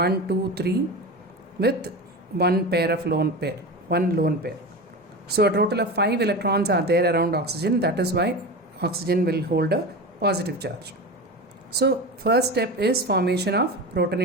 2, 3, with one lone pair. So a total of 5 electrons are there around oxygen. That is why oxygen will hold a positive charge. So first step is formation of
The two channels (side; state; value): both; normal; correlation 0.26